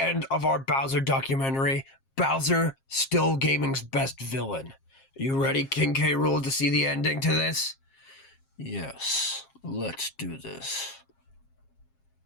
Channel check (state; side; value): late; right; 7.5 ms